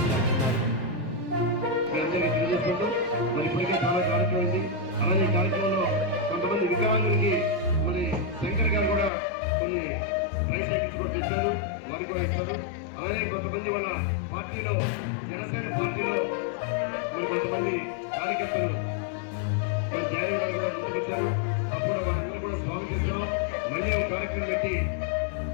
పాల్గొన్నారు. అలాగే కార్యక్రమంలో కొంతమంది వికలాంగులకి మన శంకర్ గారు కూడా కొన్ని ట్రైస్ సైకిల్స్ కూడా తెచ్చారు, వారికి కూడా ఇచ్చారు. అలాగే కొంతమంది వాళ్ళ పార్టీలో జనసేన పార్టీలో మరి కొంతమంది కార్యకర్తలు జాయిన్ గారు కూడా ముందుకొచ్చారు. అప్పుడు వాళ్ళందరూ కూడా స్వాగతిస్తున్నాం. మళ్ళీ ఒక కార్యక్రమం పెట్టి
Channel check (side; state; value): right; drops out; at 9.1 s